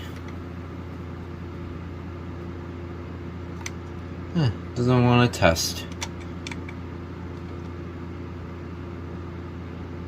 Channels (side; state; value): both; identical; correlation 1.00